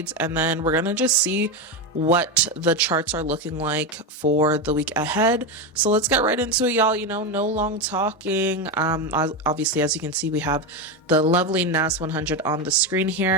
and then we're gonna just see what the charts are looking like for the week ahead. So let's get right into it, y'all. You know, no long talking. Obviously, as you can see, we have the lovely NAS100 on the screen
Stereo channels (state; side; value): normal; both; correlation 0.13